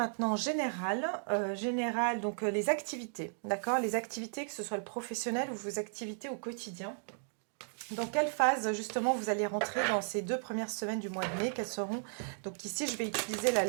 général, donc les activités, d'accord? Les activités, que ce soit le professionnel ou vos activités au quotidien. Dans quelle phase justement vous allez rentrer dans ces 2 premières semaines du mois de mai? Quelles seront... Donc ici je vais utiliser la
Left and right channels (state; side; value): silent; left; digital silence